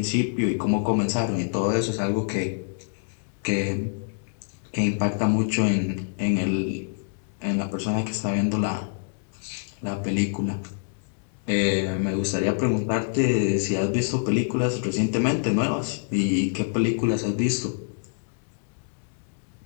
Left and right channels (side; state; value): right; silent; digital silence